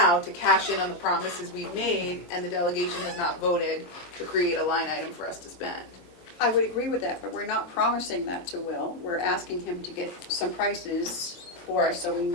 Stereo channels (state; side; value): late; right; 23 ms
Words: to cash in on the promises we've made, and the delegation has not voted to create a line item for us to spend. I would agree with that, but we're not promising that to Will. We're asking him to get some prices for us so we